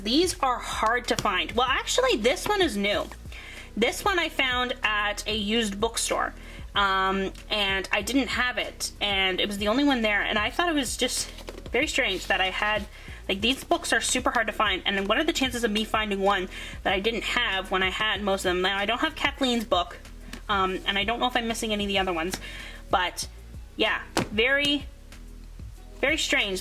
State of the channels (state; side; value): identical; both; correlation 1.00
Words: these are hard to find. Well, actually, this one is new. This one I found at a used bookstore, and I didn't have it, and it was the only one there, and I thought it was just very strange that I had, like, these books are super hard to find, and then what are the chances of me finding one that I didn't have when I had most of them? Now, I don't have Kathleen's book, and I don't know if I'm missing any of the other ones, but yeah, very, very